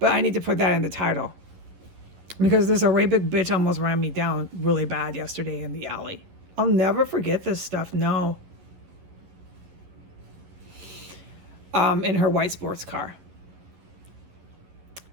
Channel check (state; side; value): late; left; 11 ms